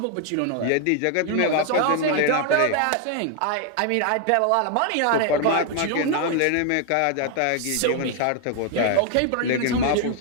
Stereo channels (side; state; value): both; different; correlation 0.00